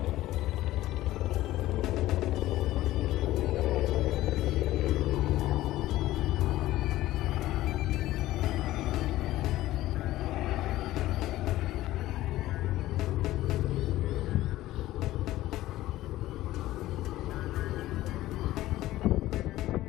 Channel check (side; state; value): right; quieter; 15.7 dB